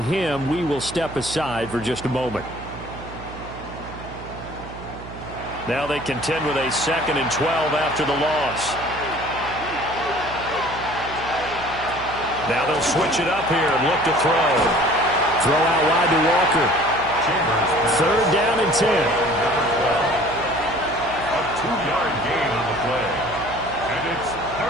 him, we will step aside for just a moment. Now they contend with a 2nd and 12 after the loss. Now they'll switch it up here and look to throw. Throw out wide to Walker. 3rd down and 10. A 2-yard gain on the play. And it's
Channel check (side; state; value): right; noise; hum, 14 dB below the sound